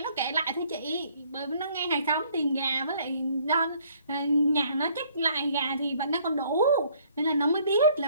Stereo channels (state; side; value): inverted; both; correlation -0.62